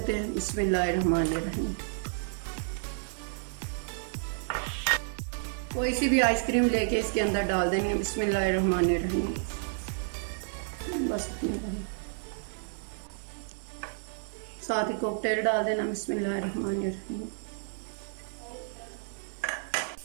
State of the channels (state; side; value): silent; left; digital silence